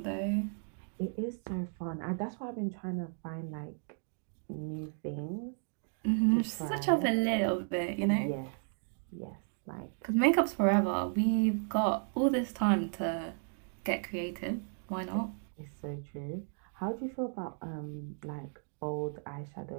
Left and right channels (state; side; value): silent; left; 55 dB below the other